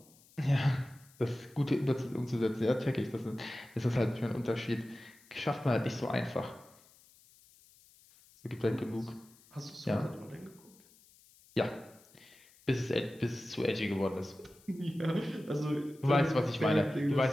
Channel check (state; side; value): noise; left; hiss, 27 dB below the sound